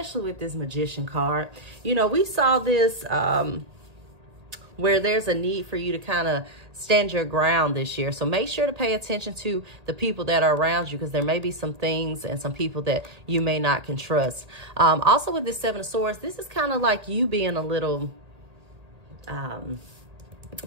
with this Magician card. You know, we saw this where there's a need for you to kind of stand your ground this year. So make sure to pay attention to the people that are around you, because there may be some things and some people that you may not can trust. Also with this Seven of Swords, this is kind of like you being a little kind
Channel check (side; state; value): left; late; 1.8 ms